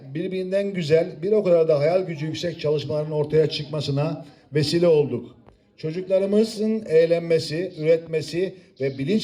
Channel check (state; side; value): identical; both; correlation 1.00